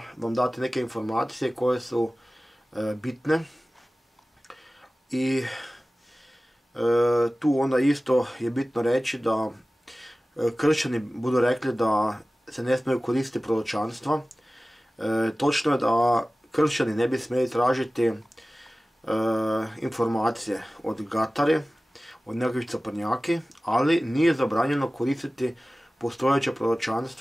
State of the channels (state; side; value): normal; both; correlation 0.97